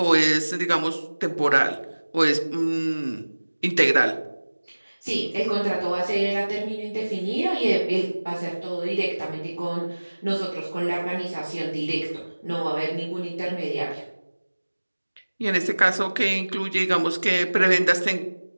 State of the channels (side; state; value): both; inverted; correlation -1.00